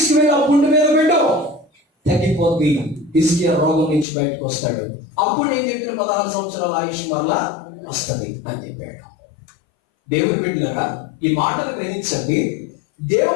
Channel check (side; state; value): right; drops out; at 4.0 s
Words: ఆ పుండు మీద పెట్టు, తగ్గిపోద్ది. హిజ్కియా రోగం నుంచి బయటకు వస్తాడు. అప్పుడు నేను చెప్పిన 16 సంవత్సరాల ఆయుష్ మరలా వస్తుంది అని చెప్పాడు. దేవుడు బిడ్డలారా, ఈ మాటను గ్రహించండి.